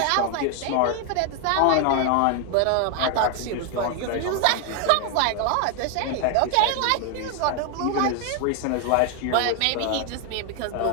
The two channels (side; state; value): both; different; correlation 0.01